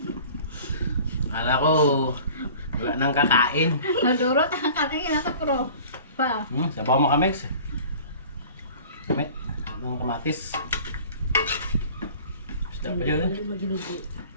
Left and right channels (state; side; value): inverted; both; correlation -0.45